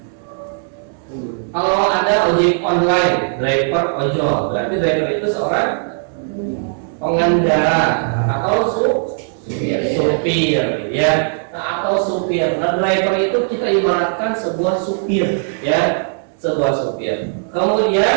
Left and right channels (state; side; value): silent; left; digital silence